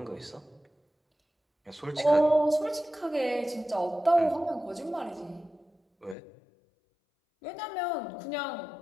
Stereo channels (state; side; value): drops out; right; at 6.2 s